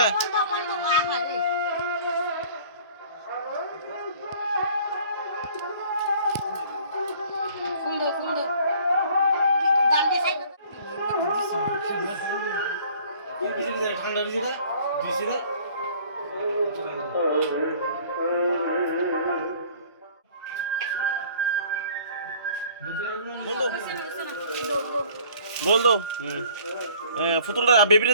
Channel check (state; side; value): inverted; both; correlation -0.52